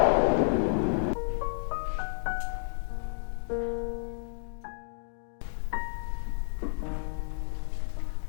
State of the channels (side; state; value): right; silent; digital silence